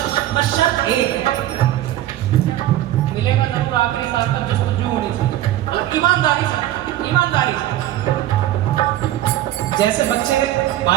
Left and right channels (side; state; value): left; quieter; 13.5 dB